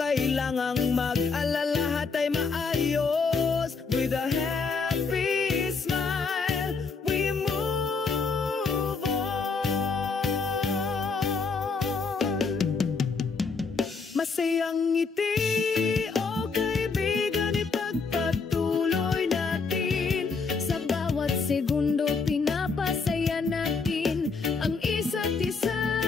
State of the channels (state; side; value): quieter; right; 4.8 dB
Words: mag-alala, lahat ay maayos. With a happy smile, we move on. Masayang ngiti, oh kaibigan, ipagpatuloy natin. Sa bawat segundo pinapasaya natin ang isa't isa.